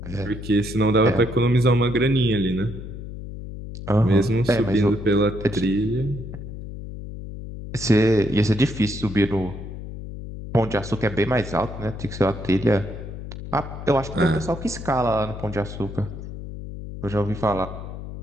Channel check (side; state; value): left; noise; hum, 10 dB below the sound